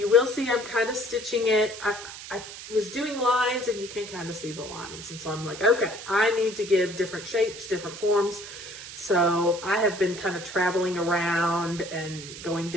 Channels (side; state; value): right; noise; hiss, 12 dB below the sound